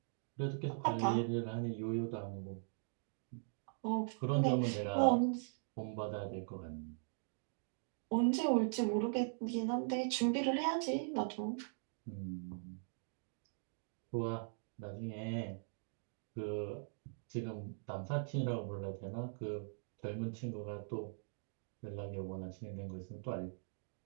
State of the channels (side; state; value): left; silent; digital silence